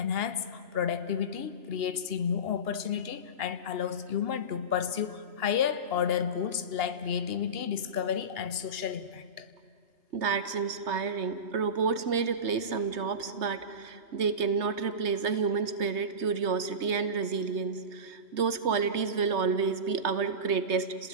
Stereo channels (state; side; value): late; left; 3.3 ms